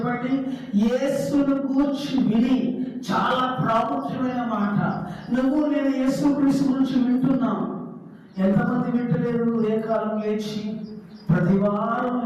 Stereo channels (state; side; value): identical; both; correlation 1.00